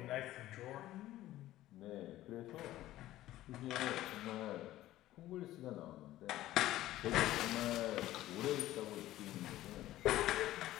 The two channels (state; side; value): quieter; right; 14.9 dB